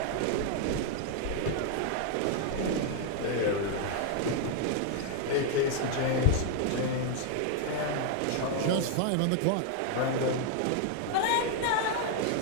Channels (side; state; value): both; different; correlation 0.00